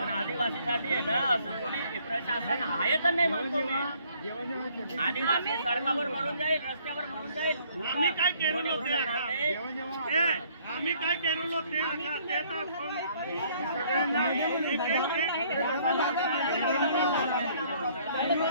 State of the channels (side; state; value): both; inverted; correlation -0.62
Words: आदिवासीसाठी आहे ना असं कोणी प्रशासन आहे तर नाही म्हणतो मी आदिवासी सडकावर मरून जाईल रस्त्यावर मरून जाईल आम्ही काय केलं आम्ही काय केलं